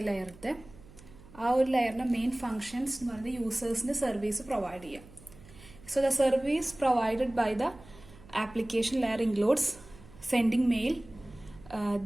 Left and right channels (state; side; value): noise; right; hum, 21 dB below the sound